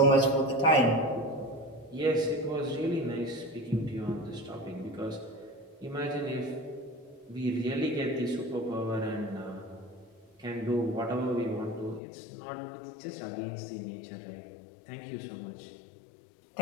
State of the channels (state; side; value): drops out; right; at 12.0 s